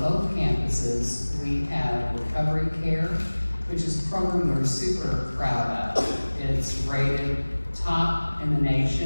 campuses, we have recovery care, which is a program we're super proud of. It's rated top in the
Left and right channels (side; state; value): both; inverted; correlation -1.00